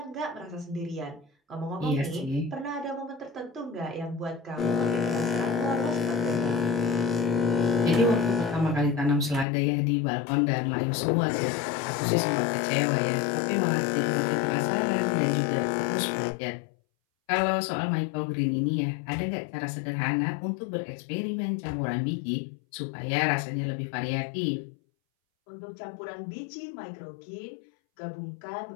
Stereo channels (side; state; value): right; drops out; at 9.5 s